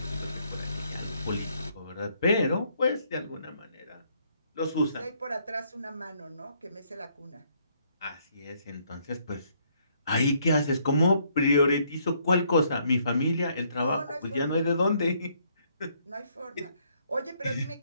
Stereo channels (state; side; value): inverted; both; correlation -0.69